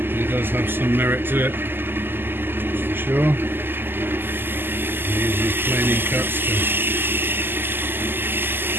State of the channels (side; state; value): left; late; 0.097 ms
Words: It does have some merit to it, that's for sure. I use these planing cuts to